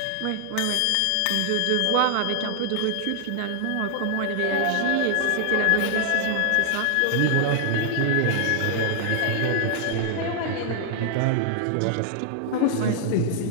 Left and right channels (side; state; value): both; different; correlation 0.00